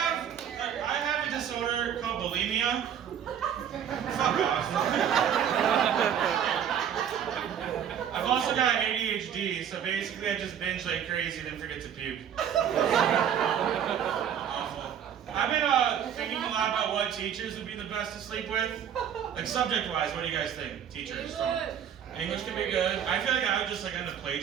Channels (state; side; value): quieter; left; 8.9 dB